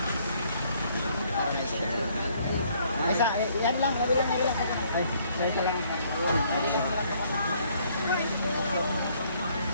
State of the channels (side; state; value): both; inverted; correlation -0.65